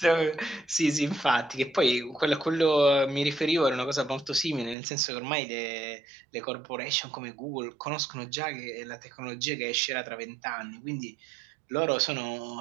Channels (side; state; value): left; drops out; at 4.8 s